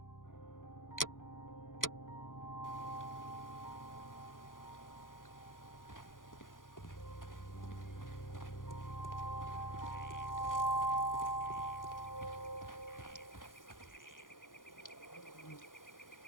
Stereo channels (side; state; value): right; late; 0.89 ms